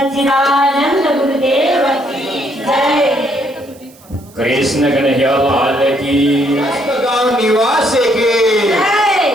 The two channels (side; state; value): right; noise; hiss, 26 dB below the sound